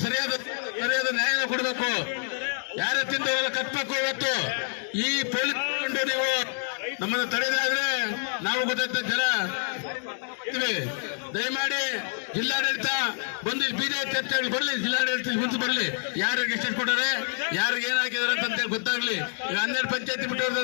ಸರಿಯಾದ ನ್ಯಾಯನ ಕೊಡಬೇಕು. ಯಾರ ತಿಂದವರೆಲ್ಲ ಕಟ್ಬೇಕು. ಇವತ್ತು ಈ ಪೊಲೀಸ್ ನೀವು ನಮ್ಮನ್ನು ತಡೆದಾದ್ರೆ ನಾವು ಗೊತ್ತಾಗ್ತ ಜನ ದಯಮಾಡಿ ಜಿಲ್ಲಾಡಳಿತ ಬಂದು ಬೀದಿ ಚರ್ಚೆ ಬರ್ಲಿ, ಜಿಲ್ಲಾಡಳಿತ ಮುಂದೆ ಬರ್ಲಿ, ಯಾರಿಗೆ ಎಷ್ಟು ಕೊಟ್ಟರೆ ಯಾರಿಗೆ ಏನ್ ಹಾಕಿದಾರೆ ಅಂತ ಗೊತ್ತಾಗ್ಲಿ. ಈಗ 12 ಪಂಚಾಯತಿ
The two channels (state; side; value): silent; right; 60 dB below the other